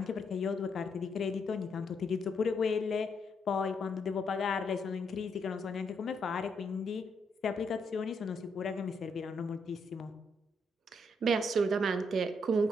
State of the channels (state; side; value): normal; both; correlation 0.76